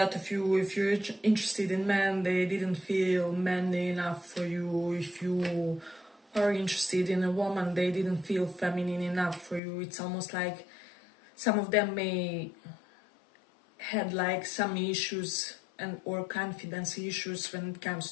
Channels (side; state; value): right; drops out; at 9.6 s